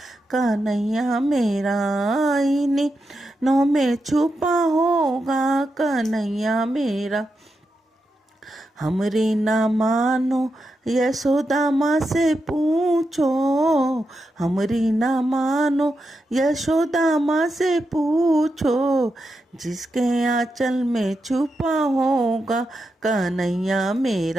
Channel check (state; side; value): normal; both; correlation 0.87